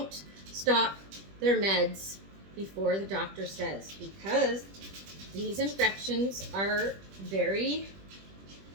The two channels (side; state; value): left; late; 20 ms